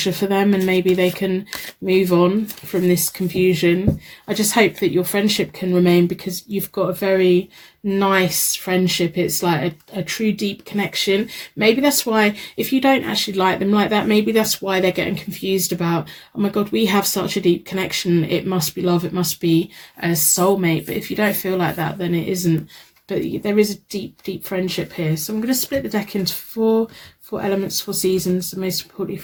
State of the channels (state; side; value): identical; both; correlation 1.00